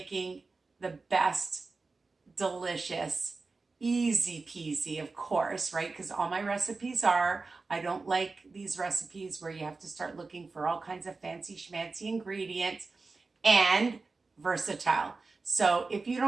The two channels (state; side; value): quieter; left; 3.9 dB